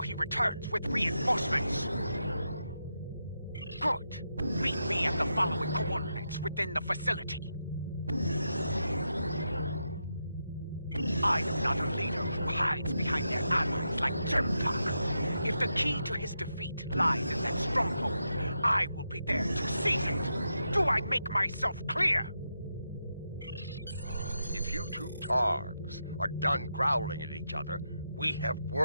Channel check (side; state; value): both; inverted; correlation -0.85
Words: he returns with reinforcements. Good. Meet me at the following coordinates within the facility. I am not a leader who hides behind their allies like Jempak. If the key to his defeat lies in that stronghold, I will be there to seize it. Do I make myself clear? If you two Targs are done growling at each other, we have